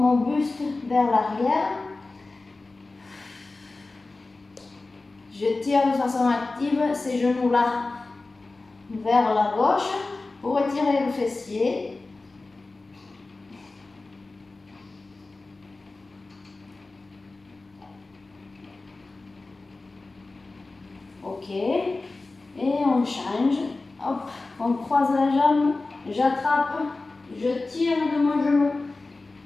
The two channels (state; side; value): quieter; right; 3.4 dB